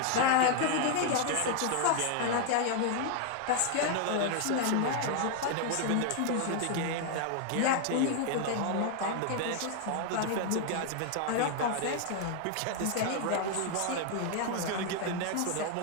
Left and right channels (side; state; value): both; different; correlation 0.00